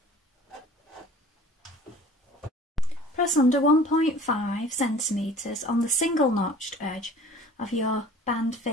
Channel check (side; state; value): both; normal; correlation 0.47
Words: Press under 1.5 centimetres on the single notched edge of your band